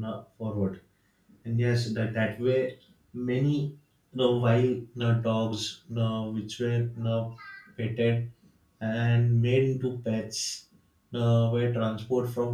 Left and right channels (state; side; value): identical; both; correlation 1.00